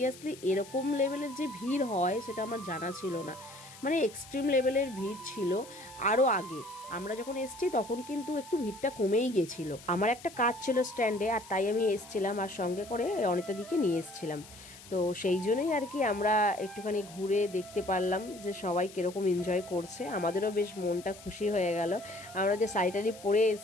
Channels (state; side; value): noise; left; hiss, 19 dB below the sound